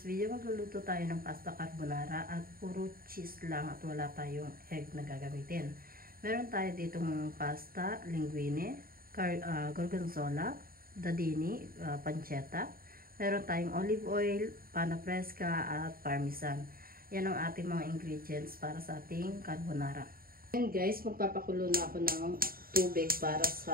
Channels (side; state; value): left; late; 0.43 ms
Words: video magluluto tayo ng pasta carbonara at puro cheese lang at wala tayong egg na gagamitin. Meron tayo ditong pasta, linguine, gorgonzola, dadini, pancetta. Meron tayong olive oil, pana fresca at parmesan. Yan ang ating mga ingredients para sa ating carbonara. And guys, magpapakulo na ako ng tubig para